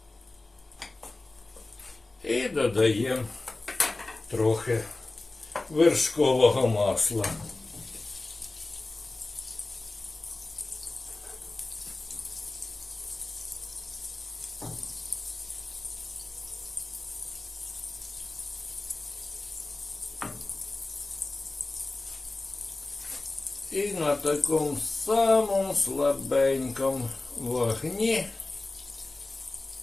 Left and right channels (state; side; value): quieter; right; 3.1 dB